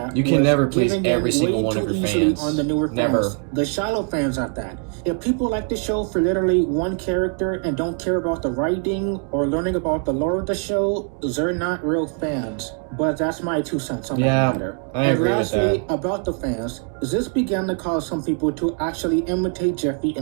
you can never please every single one of your fans. On the newer fans, the shallow fans at that. If people like the show for literally one character and don't care about the writing or learning about the lore of the show, they're not real fans. But that's my 2 cents on that matter. I agree with that. About the fans, this began to cause some people to actually imitate Jeffy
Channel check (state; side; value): quieter; left; 38.0 dB